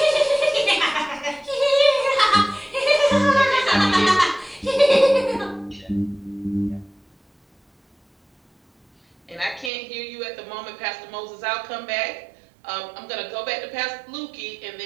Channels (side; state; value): left; drops out; at 9.7 s